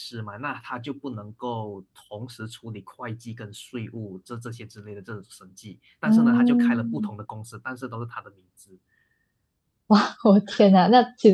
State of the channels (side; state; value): both; identical; correlation 1.00